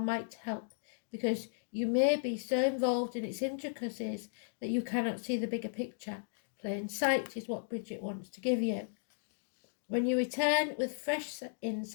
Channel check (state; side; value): silent; right; digital silence